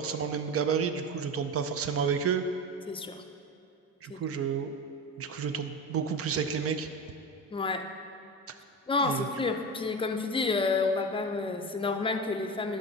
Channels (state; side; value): normal; both; correlation 0.24